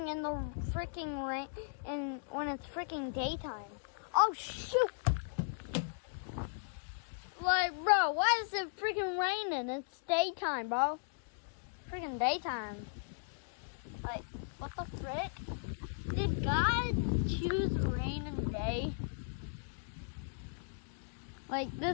in the freaking rain and when it's freaking daytime? Oh shoot! Like, bro, why is it freaking raining? It's daytime, bro. Freaking daytime. Like, what the frick? Did God choose rain and day? Like,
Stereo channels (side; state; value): right; silent; digital silence